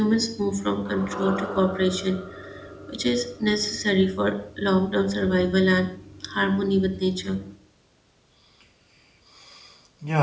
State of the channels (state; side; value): identical; both; correlation 1.00